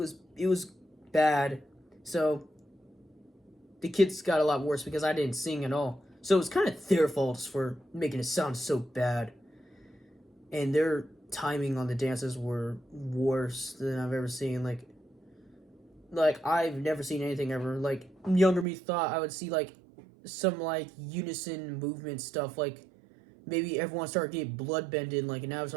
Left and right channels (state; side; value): drops out; left; at 18.7 s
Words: bad. So, the kids got a lot worse because I didn't sing at all. So it was kind of their fault for making it sound so bad. And their timing on the dances were worse than I've ever seen. Like I've never seen anything ever. Like, younger me thought I would see, like, some, like, unison movement stuff. Like, maybe everyone started getting bloodbended, like an